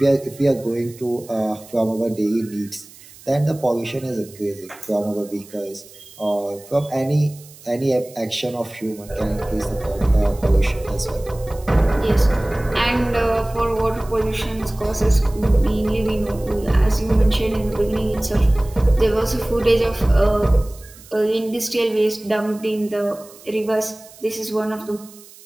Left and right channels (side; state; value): right; noise; hiss, 22 dB below the sound